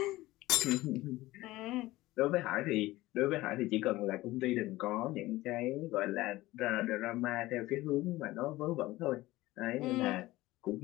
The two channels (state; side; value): quieter; right; 18.1 dB